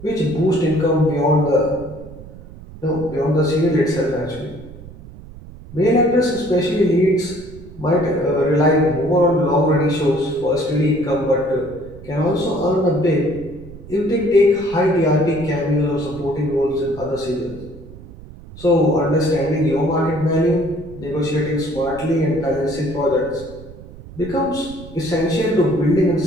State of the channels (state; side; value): noise; right; rumble, 17 dB below the sound